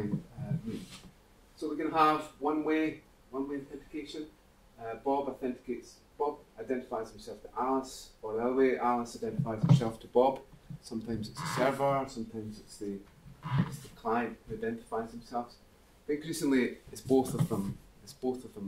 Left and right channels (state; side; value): identical; both; correlation 1.00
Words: me. So we're going to have one-way authentication. Bob identifies himself to Alice, or the other way, Alice identifies herself to Bob. Sometimes it's the server, sometimes it's the client who identifies themselves. But increasingly, it's both of them. It's both of